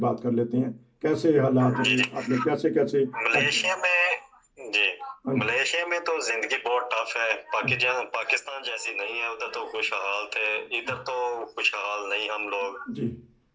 बात कर लेते हैं, कैसे हालात जी हैं, जी, आपने कैसे कैसे। मलेशिया में जी, हाँ जी, मलेशिया में तो जिंदगी बहुत टफ है। पाकिस्तान जैसी नहीं है। उधर तो खुशहाल थे, इधर तो खुशहाल नहीं हम लोग। जी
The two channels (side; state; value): both; identical; correlation 1.00